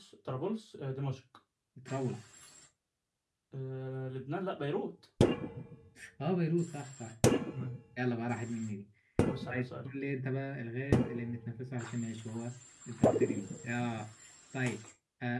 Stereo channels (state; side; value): identical; both; correlation 1.00